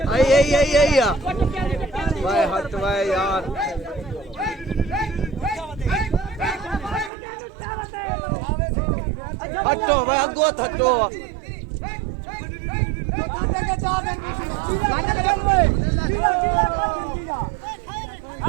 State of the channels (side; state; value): left; drops out; at 7.1 s